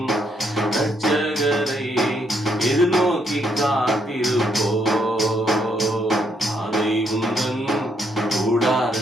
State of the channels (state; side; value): normal; both; correlation 0.74